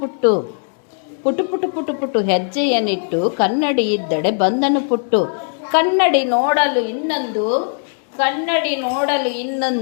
ಪುಟ್ಟು. ಪುಟ್ಟು ಪುಟ್ಟು ಪುಟ್ಟು ಪುಟ್ಟು ಹೆಜ್ಜೆಯನ್ನಿಟ್ಟು ಕನ್ನಡಿ ಇದ್ದಡೆ ಬಂದನು ಪುಟ್ಟು. ಕನ್ನಡಿ ನೋಡಲು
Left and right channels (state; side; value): silent; right; 67 dB below the other